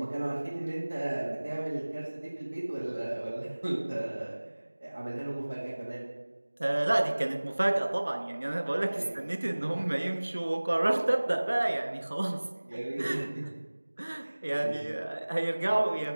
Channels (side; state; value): both; inverted; correlation -1.00